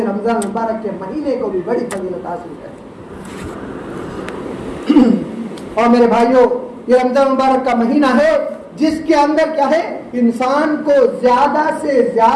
رمضان مبارک کے مہینے کو بھی بڑی فضیلت حاصل ہے۔ اور میرے بھائیوں، یہ رمضان مبارک کا مہینہ ہے جس کے اندر کیا ہے، انسان کو زیادہ سے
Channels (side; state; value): both; identical; correlation 1.00